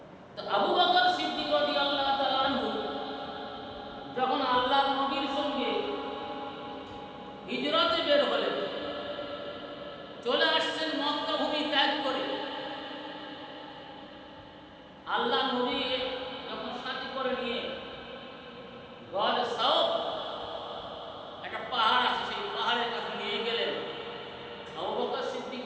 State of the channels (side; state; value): both; identical; correlation 1.00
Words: তো আবু বকর সিদ্দিক রাদিয়াল্লাহু তাআলা আনহু যখন আল্লাহর নবীর সঙ্গে হিজরতে বের হলেন, চলে আসছেন মক্কা ভূমি ত্যাগ করে, আল্লাহ নবী যখন সাথী করে নিয়ে গড় সাউফ একটা পাহাড় আছে, সেই পাহাড়ের কাছে নিয়ে গেলেন। আবু বকর সিদ্দিক